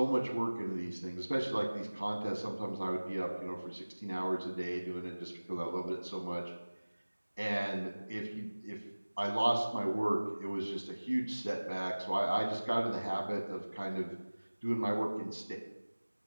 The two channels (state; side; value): inverted; both; correlation -1.00